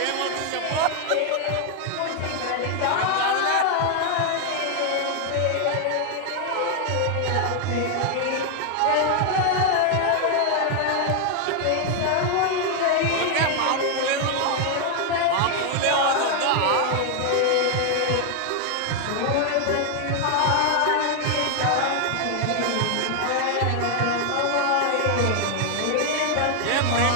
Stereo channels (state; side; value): different; both; correlation 0.00